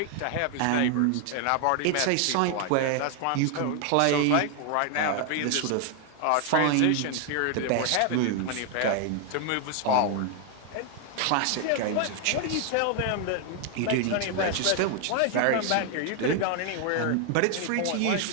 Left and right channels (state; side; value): different; both; correlation 0.00